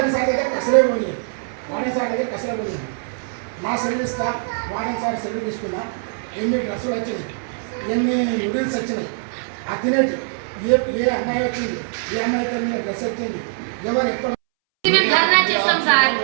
సార్ దగ్గర కసలే పోనీ వార్డెన్ సార్ దగ్గర కసలే పోనీ నా సెలవు ఇస్తా వార్డెన్ సార్ సెలవు తీసుకున్నా ఎన్ని డ్రెస్సులు వచ్చినాయి ఎన్ని నూడిల్స్ వచ్చినాయి ఆ తినేటి ఏ అమ్మాయి వచ్చింది ఏ అమ్మాయితో మీద డ్రెస్ వచ్చింది ఎవరు ఎక్కడ ధర్నా చేస్తాం సార్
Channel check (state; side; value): silent; left; 64 dB below the other